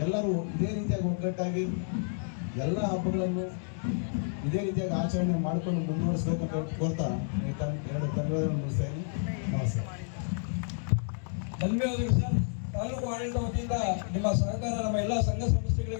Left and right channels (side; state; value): right; silent; digital silence